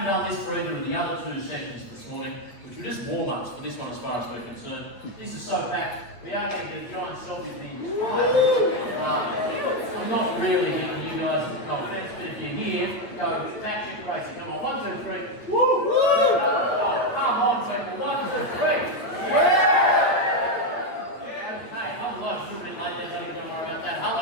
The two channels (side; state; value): right; late; 8.3 ms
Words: done this for either of the other two sessions this morning, which were just warm-ups for this one as far as we're concerned. This is so packed, we are going to get a giant selfie of the entire. I'm not really giving you guys no offense, but if you're here, go batshit crazy. Come on, 1, 2, 3. Woo! Oh, come on, people. 1, 2, 3. Yeah! Okay, hello, it's a little bit late there, don't even worry about that.